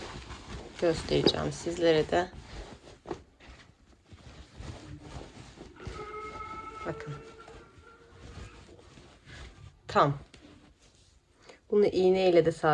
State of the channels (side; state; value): both; identical; correlation 1.00